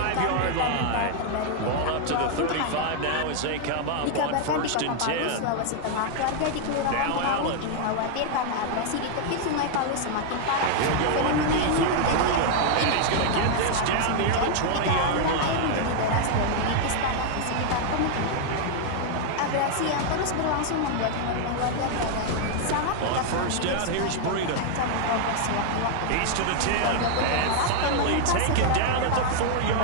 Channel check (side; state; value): both; different; correlation 0.00